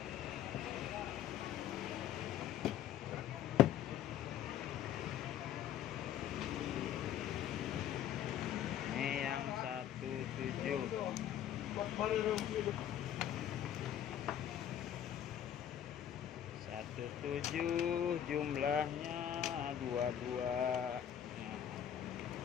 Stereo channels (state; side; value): quieter; right; 10.2 dB